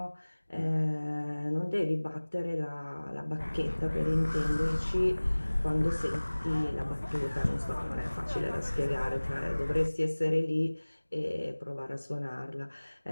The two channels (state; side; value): inverted; both; correlation -1.00